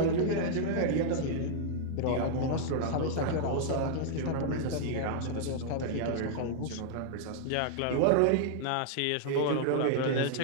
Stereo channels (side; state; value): both; different; correlation -0.01